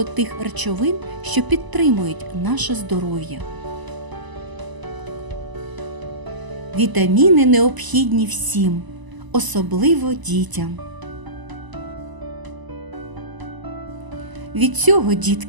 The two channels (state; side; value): late; left; 1.0 ms